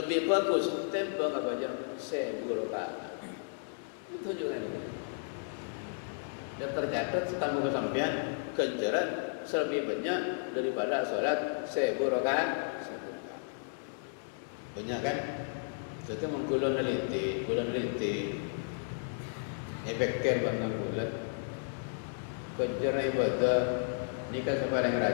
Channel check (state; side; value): silent; right; digital silence